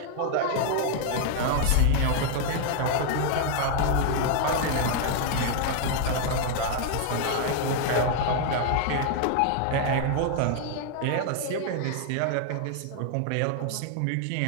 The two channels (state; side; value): different; both; correlation 0.00